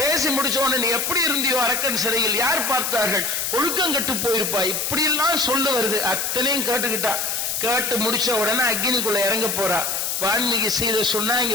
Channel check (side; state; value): left; noise; hiss, 1 dB below the sound